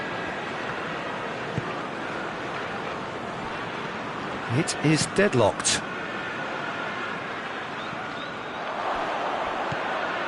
It is deadlocked.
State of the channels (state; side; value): identical; both; correlation 1.00